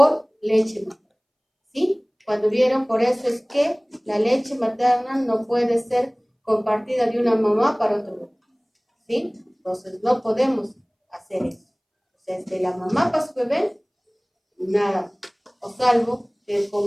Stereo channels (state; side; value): identical; both; correlation 1.00